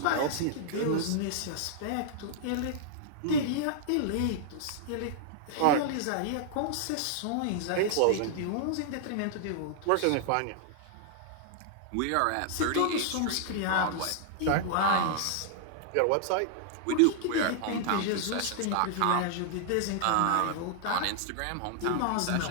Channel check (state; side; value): different; both; correlation -0.01